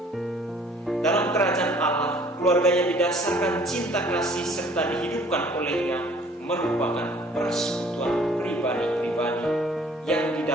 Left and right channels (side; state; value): both; normal; correlation 0.55